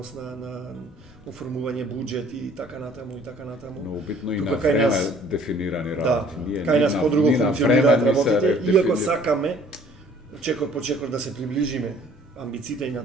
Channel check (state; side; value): normal; both; correlation 0.56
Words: на оформување буџет и така натаму и така натаму. Но битно и Тука на кај време нас- дефинирани Да, работи. Ние кај ни нас на- подруго ни на функционираат време ни се работите, иако дефинира- сакаме чекор по чекор да се приближиме амбициите и на